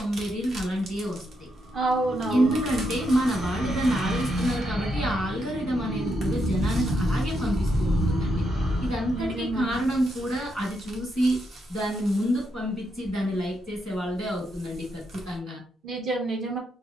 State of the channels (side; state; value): both; normal; correlation 0.80